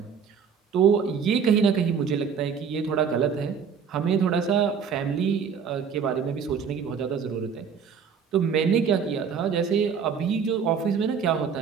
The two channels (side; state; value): left; quieter; 6.7 dB